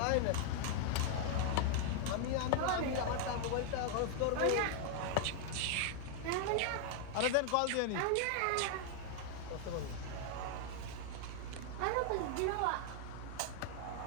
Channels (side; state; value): both; different; correlation 0.00